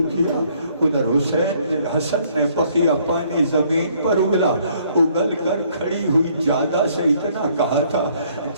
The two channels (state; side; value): inverted; both; correlation -0.64